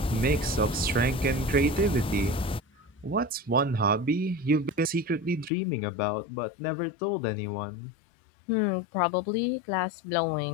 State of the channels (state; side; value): drops out; right; at 5.5 s